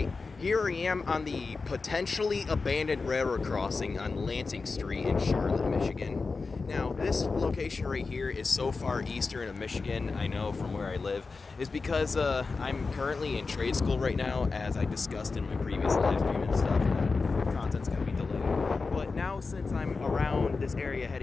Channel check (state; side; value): quieter; right; 4.2 dB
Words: here I am on the potentially abandoned railroad crossing on Lansing Street in Charlotte, Michigan. Now, this location right here is so far eastern of Michigan, I know from where I live, is because I'm currently in trade school right now, as I discussed in my previous live stream and stuff. Content's going to be delayed. But now, since I'm around this area